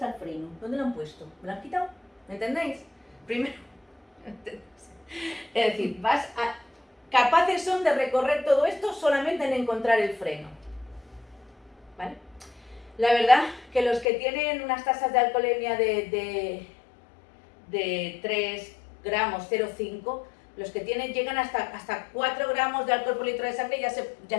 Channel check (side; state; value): right; drops out; at 14.1 s